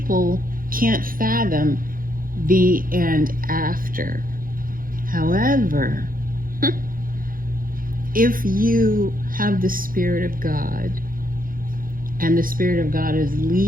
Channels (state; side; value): late; left; 0.41 ms